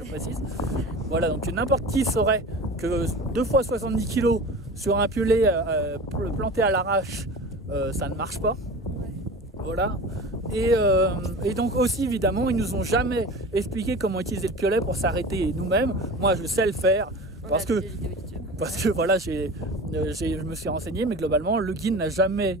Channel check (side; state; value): both; normal; correlation 0.35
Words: précise. Voilà, donc n'importe qui saurait que 2 fois 70 kg sur un piolet planté à l'arrache, ça ne marche pas. Voilà. Et donc aussi évidemment ils nous ont jamais expliqué comment utiliser le piolet pour s'arrêter nous-mêmes. Moi je sais le faire parce que voilà je me suis renseigné, mais globalement le guide n'a jamais